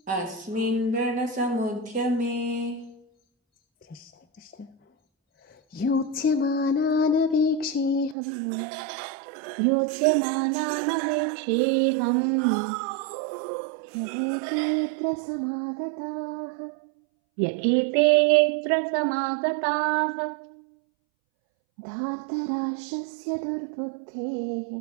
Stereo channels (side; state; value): left; drops out; at 8.2 s